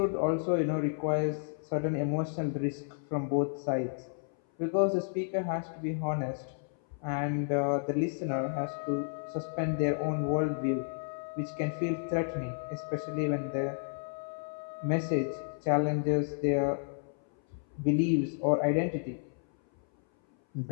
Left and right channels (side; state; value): right; silent; 57 dB below the other